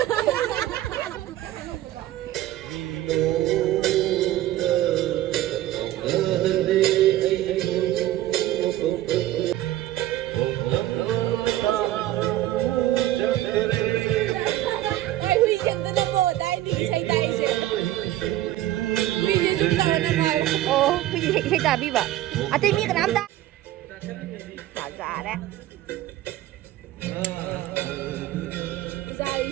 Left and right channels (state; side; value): quieter; left; 14.4 dB